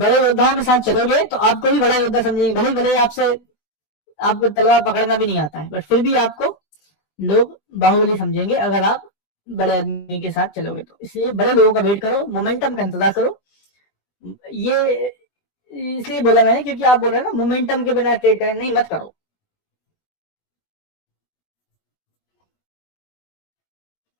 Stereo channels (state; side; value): late; right; 20 ms